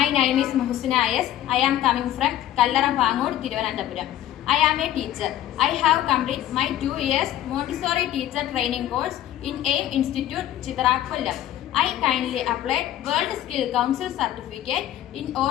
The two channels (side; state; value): right; quieter; 12.4 dB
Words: name is Muhsina Ayas. I am coming from Kallara Pangood, Thiruvananthapuram. I am a teacher. I have completed my 2 years Montessori teacher training course in AIM Institute, Chitara, Kollam. I kindly applied World Skill Council certificate in